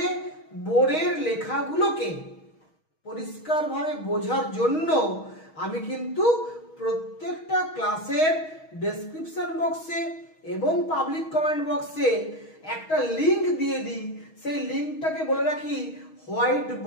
বোর্ডের লেখাগুলোকে পরিষ্কারভাবে বোঝার জন্য আমি কিন্তু প্রত্যেকটা ক্লাসের ডেসক্রিপশন বক্সে এবং পাবলিক কমেন্ট বক্সে একটা লিংক দিয়ে দিই। সেই লিংকটাকে বলে রাখি হোয়াইট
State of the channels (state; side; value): late; right; 6.3 ms